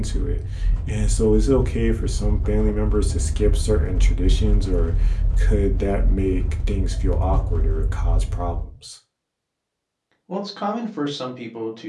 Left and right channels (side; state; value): both; identical; correlation 1.00